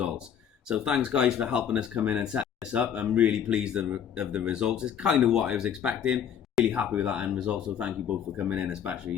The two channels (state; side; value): quieter; right; 8.6 dB